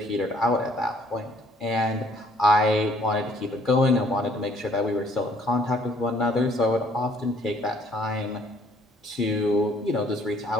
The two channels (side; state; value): both; normal; correlation 0.61